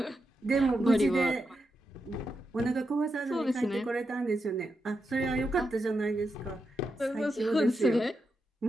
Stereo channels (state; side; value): normal; both; correlation 0.86